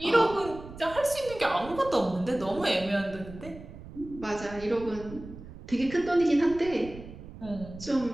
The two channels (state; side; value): noise; right; rumble, 15 dB below the sound